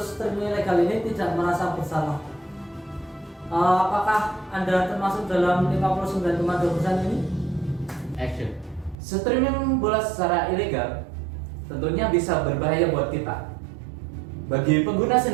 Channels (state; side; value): drops out; left; at 9.0 s